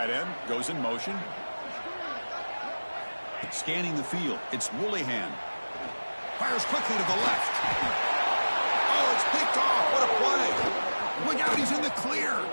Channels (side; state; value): both; inverted; correlation -1.00